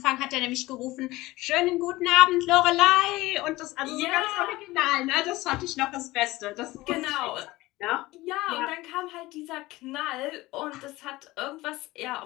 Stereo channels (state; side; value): quieter; right; 19.2 dB